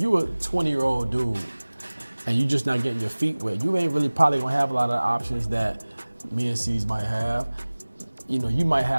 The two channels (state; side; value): inverted; both; correlation -1.00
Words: a 20-year-old dude and you just not getting your feet wet, you ain't really probably gonna have a lot of options that me and C's might have. you might